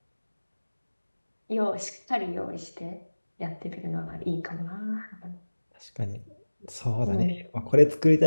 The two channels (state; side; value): inverted; both; correlation -1.00